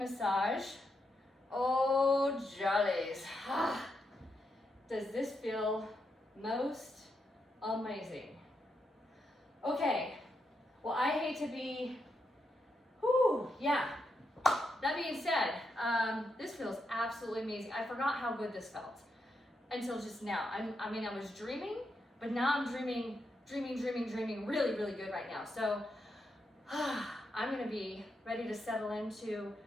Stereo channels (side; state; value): both; normal; correlation 0.83